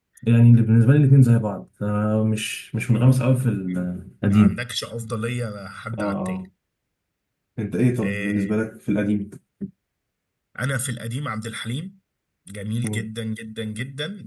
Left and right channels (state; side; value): identical; both; correlation 1.00